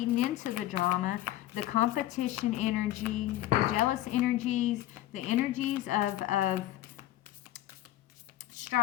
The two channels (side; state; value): right; quieter; 14.6 dB